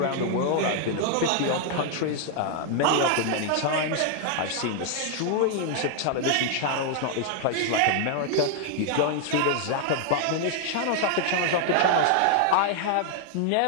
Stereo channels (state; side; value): different; both; correlation 0.00